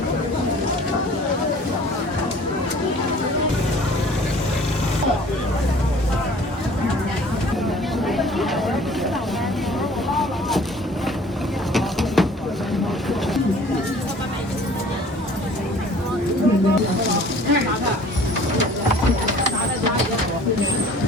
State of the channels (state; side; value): normal; both; correlation 0.50